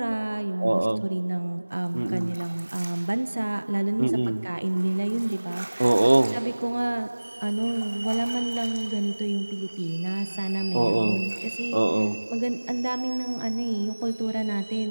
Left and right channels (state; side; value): inverted; both; correlation -1.00